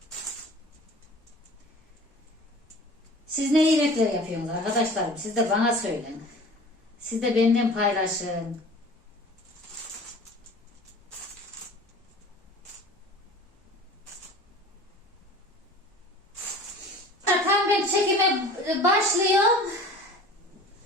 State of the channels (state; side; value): normal; both; correlation 0.42